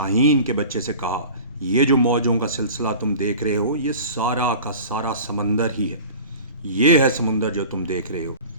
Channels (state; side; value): inverted; both; correlation -0.39